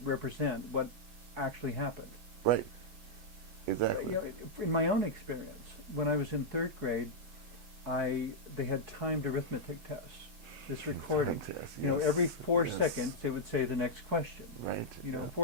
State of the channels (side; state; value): left; late; 6.1 ms